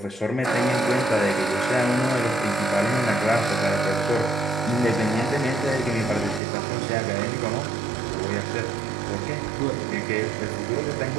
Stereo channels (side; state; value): left; drops out; at 6.4 s